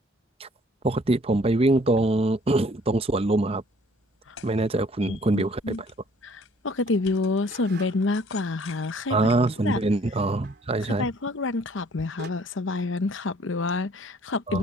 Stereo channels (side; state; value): both; normal; correlation 0.58